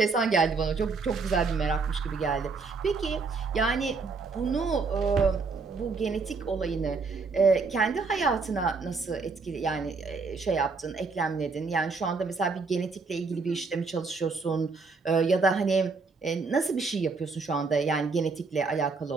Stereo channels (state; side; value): quieter; left; 4.4 dB